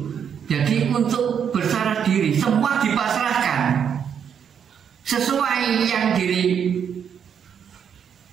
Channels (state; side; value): quieter; left; 7.8 dB